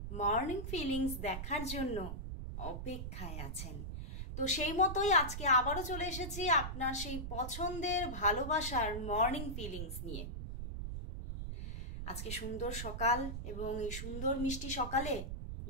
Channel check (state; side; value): noise; right; rumble, 6 dB below the sound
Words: মর্নিং ফিলিংস দেখার জন্য অপেক্ষায় আছেন। তো সেই মতোই আজকে আবারও চলে এসেছি আপনার সেই পছন্দের ভালোবাসার মর্নিং ফিলিংস নিয়ে। আজকে সুন্দর সকাল এবং এই সুন্দর মিষ্টি সকালে